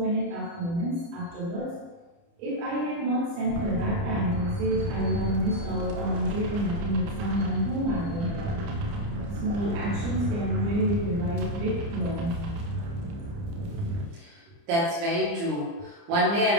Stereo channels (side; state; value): left; late; 29 ms